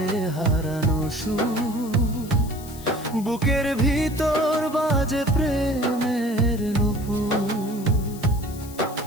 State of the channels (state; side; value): noise; left; hiss, 17 dB below the sound